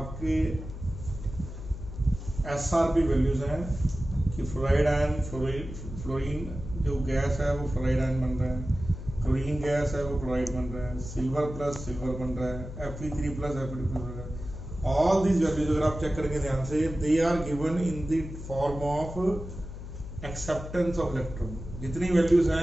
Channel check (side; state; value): left; noise; hum, 10 dB below the sound